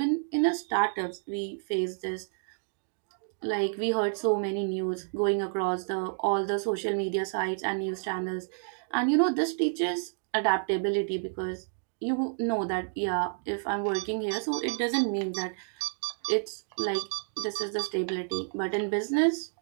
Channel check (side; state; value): left; silent; digital silence